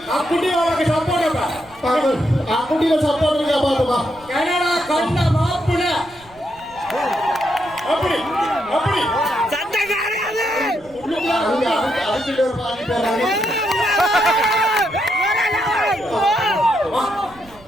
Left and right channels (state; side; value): noise; right; rumble, 25 dB below the sound